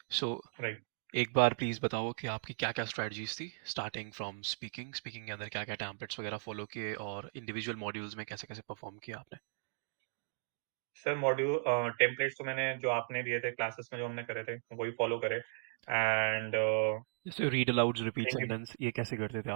सो राइट। एक बार प्लीज़ बताओ कि आपकी क्या क्या स्ट्रेटजीज थी, स्टार्टिंग फ्रॉम स्पीकिंग स्पीकिंग के अंदर क्या क्या टेम्पलेट्स वगैरह फॉलो किए, और इंडिविजुअल मॉड्यूल्स में कैसे कैसे परफॉर्म किया आपने। सर मॉड्यूल टेम्पलेट्स तो मैंने जो आपने दिए थे क्लासेस में जो हमने करे थे वही फॉलो करे। एंड जैसे रीड अलाउड्स, रिपीट सेंटेंस, ये कैसे करते थे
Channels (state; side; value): silent; left; digital silence